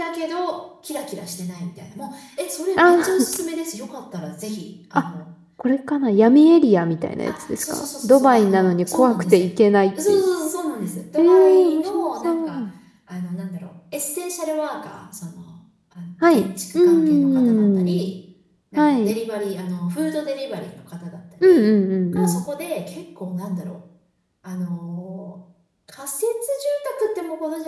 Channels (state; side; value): identical; both; correlation 1.00